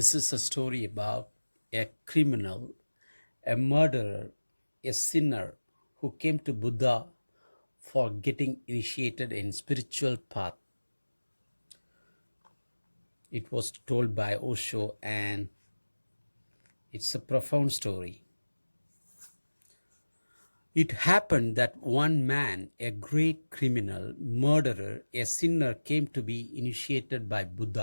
is a story about a criminal, a murderer, a sinner who came to Buddha for getting initiated in spiritual path. It was told by Osho and it's a profound story. It happened that one man, a great criminal, murderer, a sinner came to be initiated by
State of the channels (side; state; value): both; inverted; correlation -1.00